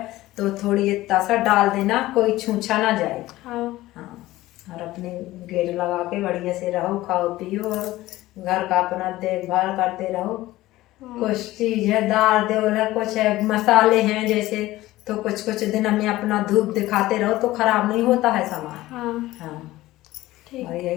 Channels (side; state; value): right; quieter; 17.0 dB